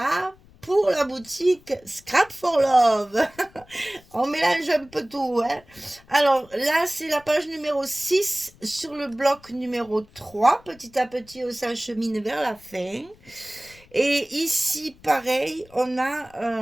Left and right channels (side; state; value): left; noise; rumble, 27 dB below the sound